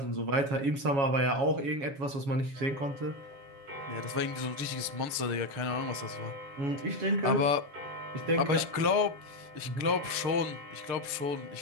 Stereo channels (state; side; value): late; left; 6.7 ms